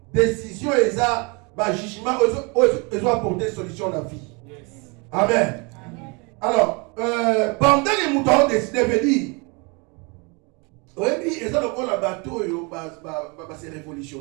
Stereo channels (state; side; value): quieter; left; 30.5 dB